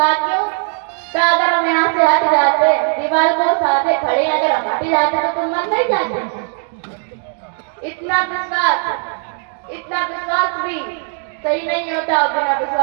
क्यों? कहा अगर हम यहाँ से हट जाते, दीवार को साथे खड़े अगर हम हट जाते तो तुम मर नहीं जाते। इतना विश्वास भी सही नहीं होता, और बिना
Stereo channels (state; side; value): silent; left; 55 dB below the other